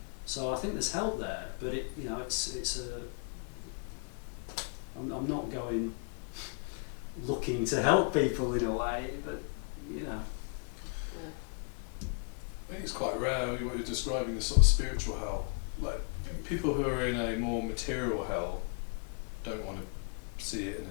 So I think there's help there, but it's a. I'm not going looking to help people in a way, but I think it's quite rare what you're describing, this sort of spiritual hell. Like people who are in a more material hell don't want to see it in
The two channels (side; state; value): right; quieter; 38.5 dB